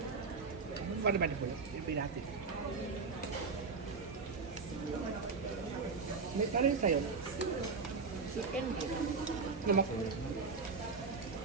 Ano ba naman po nabinati ko? May parang sa'yo. Chicken din. Naman ko.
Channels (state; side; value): quieter; left; 4.7 dB